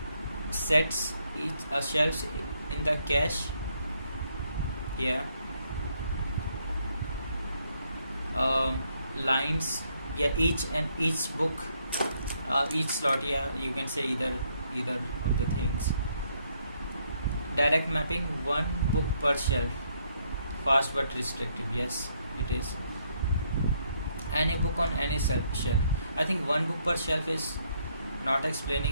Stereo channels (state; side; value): inverted; both; correlation -0.71